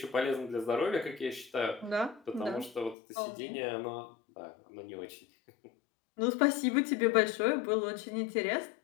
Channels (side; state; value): right; drops out; at 3.0 s